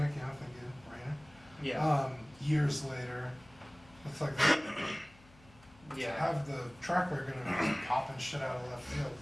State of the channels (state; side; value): noise; left; hum, 25 dB below the sound